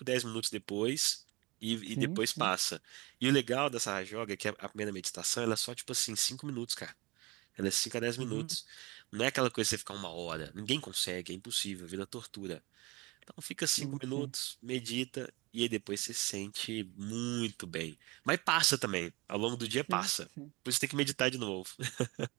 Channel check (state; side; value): quieter; left; 24.2 dB